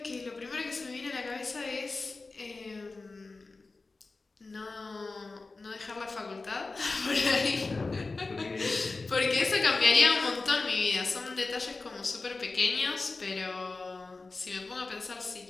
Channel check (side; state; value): right; quieter; 3.7 dB